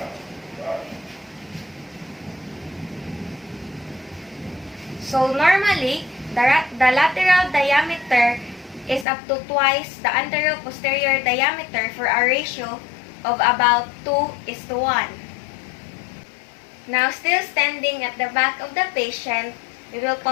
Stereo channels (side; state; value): right; drops out; at 9.1 s